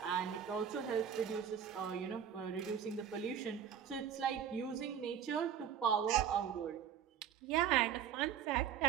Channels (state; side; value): quieter; left; 8.5 dB